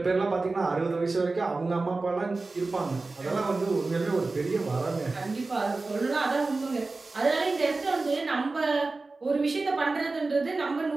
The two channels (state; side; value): quieter; left; 3.5 dB